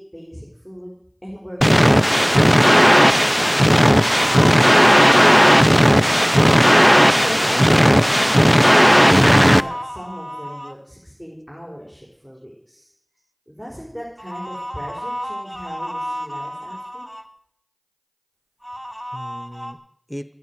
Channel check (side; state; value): both; identical; correlation 1.00